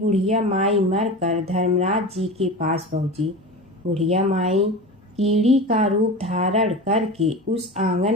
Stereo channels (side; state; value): both; normal; correlation 0.29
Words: माई मरकर धर्मराज जी के पास पहुंची। बुढ़िया माई कीड़ी का रूप धारण करके उस आंगन